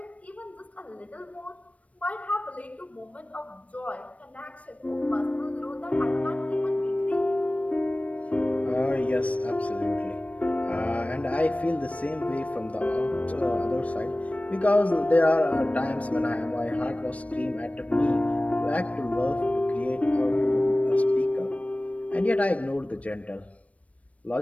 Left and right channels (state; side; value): late; right; 0.066 ms